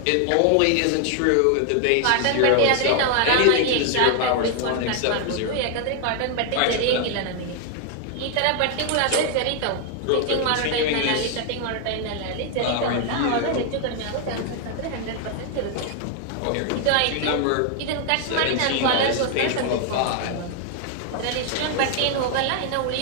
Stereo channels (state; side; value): different; both; correlation 0.00